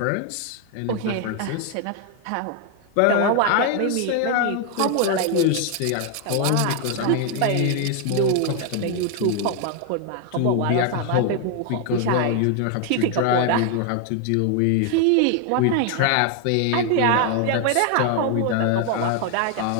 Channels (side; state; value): both; different; correlation 0.01